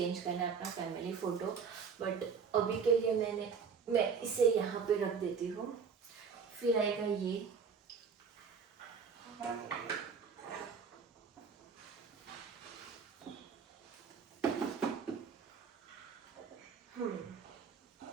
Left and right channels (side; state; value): left; quieter; 6.0 dB